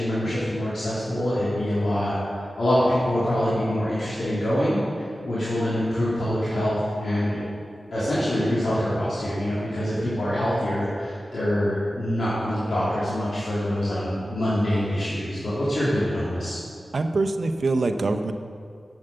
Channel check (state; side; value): normal; both; correlation 0.93